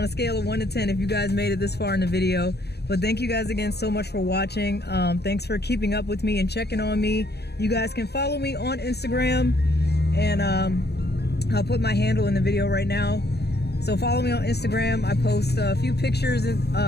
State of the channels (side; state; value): right; late; 0.48 ms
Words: a scale of 1 to 10 if you guys made it this far in the video. But thank you guys again so much for watching. Thanks for keeping up with me and checking on me. You guys can follow me on Instagram, and I'll put my handle in the video right now. So follow me on Instagram. I post a few pictures